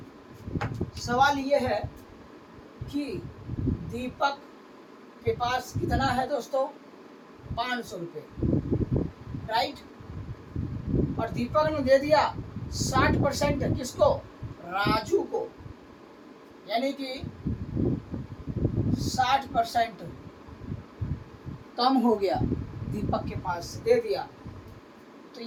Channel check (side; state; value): both; identical; correlation 1.00